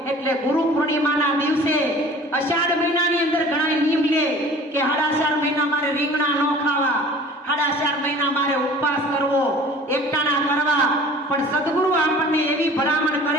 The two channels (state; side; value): normal; both; correlation 0.46